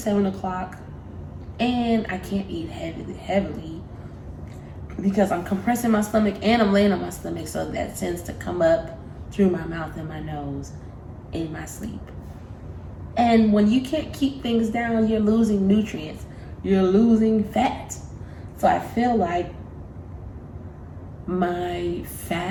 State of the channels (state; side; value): identical; both; correlation 1.00